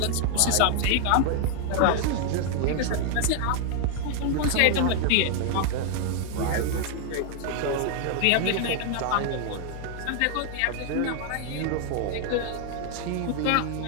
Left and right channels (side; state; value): both; different; correlation 0.00